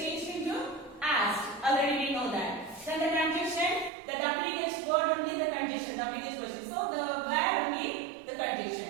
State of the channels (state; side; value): drops out; left; at 3.9 s